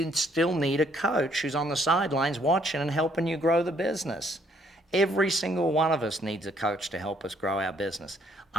still need a coach who's on the sidelines watching and helping you grow the business. Every single one of us needs a coach to help us grow our business.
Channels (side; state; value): both; normal; correlation 0.66